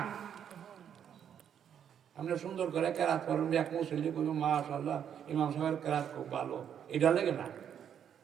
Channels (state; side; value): quieter; left; 8.8 dB